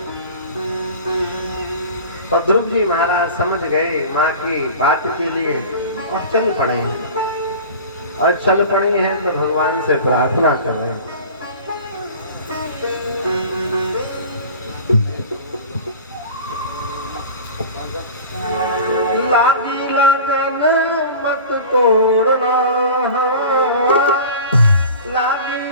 और ध्रुव जी महाराज समझ गए माँ की बात के लिए और चल पड़े हैं। और चल पड़े हैं तो भगवान से प्रार्थना कर रहे हैं। लागी लगन मत तोड़ना, लागी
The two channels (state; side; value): inverted; both; correlation -0.37